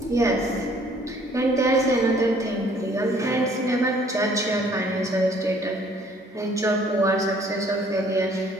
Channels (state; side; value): normal; both; correlation 0.59